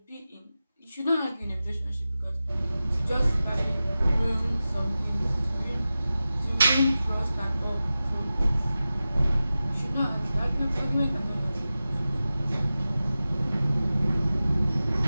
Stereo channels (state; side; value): inverted; both; correlation -0.95